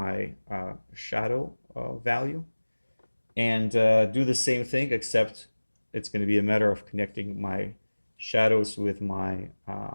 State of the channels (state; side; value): inverted; both; correlation -1.00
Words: shadow value and do the same thing, except it's going to be a matter of connecting my shadows with my